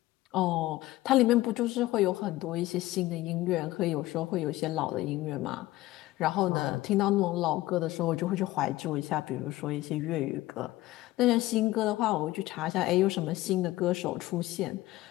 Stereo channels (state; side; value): quieter; right; 17.4 dB